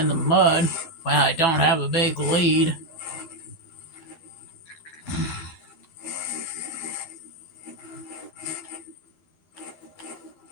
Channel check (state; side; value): late; right; 11 ms